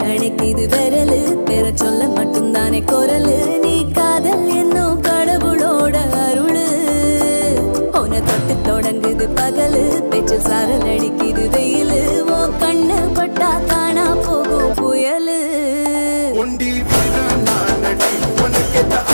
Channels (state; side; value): inverted; both; correlation -1.00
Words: அணைக்குது விரலு பெற சொல்ல மட்டும்தானே குரலு நீ காதல் என்னும் கடவுளோட அருளு உன தொட்டு தொடங்குது பகலு பேச்சில் சாரல் அடிக்குது வெயிலு ஓ கண்ணு பட்டா காணா போகும் புயலு ஒண்டி வீரன் நானடி உனக்கேத்த